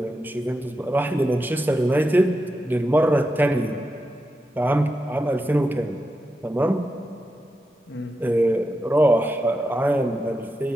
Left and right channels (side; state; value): both; normal; correlation 0.88